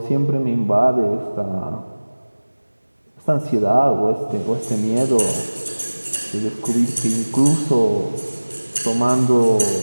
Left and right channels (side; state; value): both; inverted; correlation -1.00